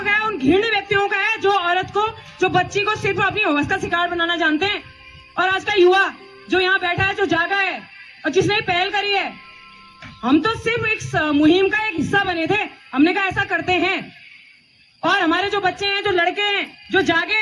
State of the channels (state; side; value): identical; both; correlation 1.00